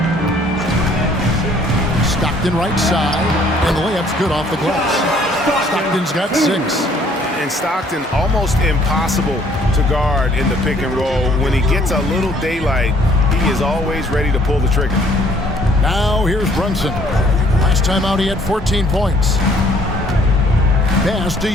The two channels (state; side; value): normal; both; correlation 0.61